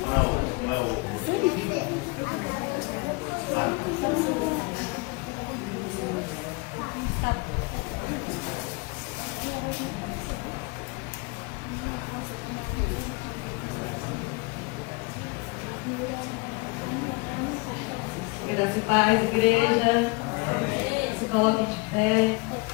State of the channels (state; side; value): quieter; right; 27.2 dB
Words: Não é o. Graça e paz, igreja. Se coloquem de pé.